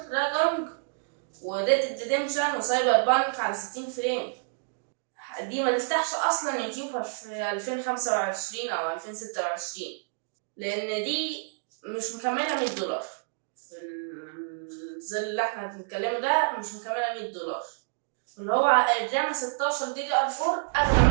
راجونج وريد ريديمشن وسايبر بانك على 60 فريم. دي ما تفتحش اصلا يوتيوب في 2025 او 2026، لان دي مش مكمله $100 في الظل اللي احنا بنتكلمه ده، مش مكمله $100، اللي هو الرام 16 دي دي ار 4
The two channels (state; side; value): silent; left; digital silence